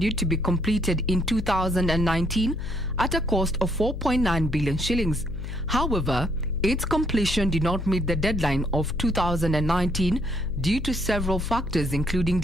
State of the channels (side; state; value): left; noise; hum, 7 dB below the sound